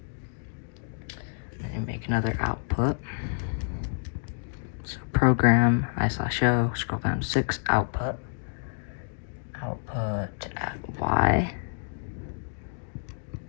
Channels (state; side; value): silent; right; digital silence